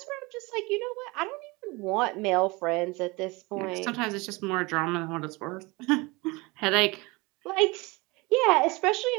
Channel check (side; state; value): left; quieter; 24.6 dB